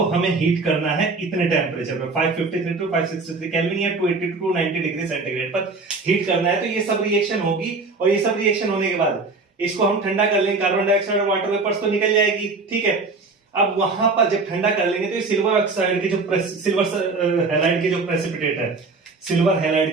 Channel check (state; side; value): quieter; left; 3.8 dB